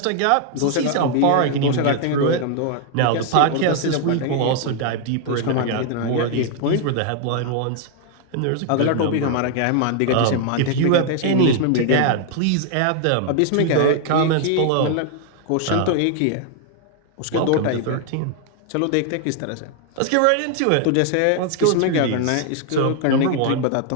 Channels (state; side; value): different; both; correlation 0.00